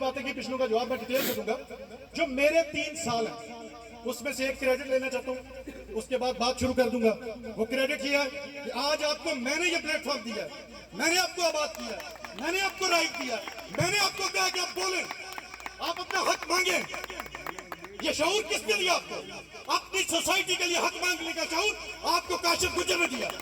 की, पिछलों का जवाब मैं डिटेल से दूंगा। जो मेरे 3 साल हैं उसमें से एक क्रेडिट लेना चाहता हूं, उसके बाद बात शुरू कर दूंगा। वो क्रेडिट ये है कि आज आपको मैंने ये प्लेटफॉर्म दिया है, मैंने आपको आबाद किया, मैंने आपको राइट दिया, मैंने आपको कहा कि आप बोले, आप अपना हक मांगे। ये शऊर किसने दिया आपको? अपनी सोसाइटी के लिए हक मांगने का शऊर आपको काशिफ गुजर ने दिया।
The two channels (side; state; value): both; identical; correlation 1.00